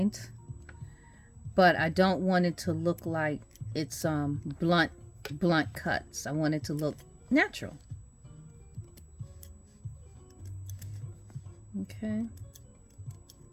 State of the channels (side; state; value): both; identical; correlation 1.00